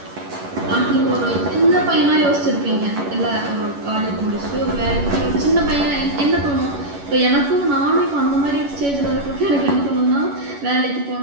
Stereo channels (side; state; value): left; late; 11 ms